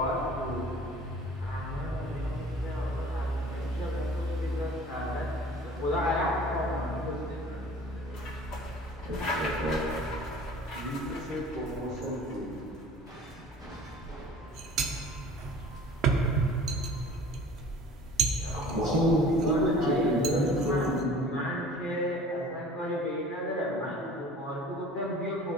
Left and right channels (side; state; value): both; normal; correlation 0.46